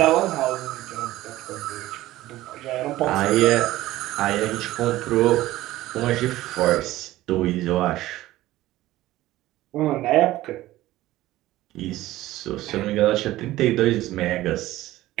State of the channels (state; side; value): quieter; left; 16.0 dB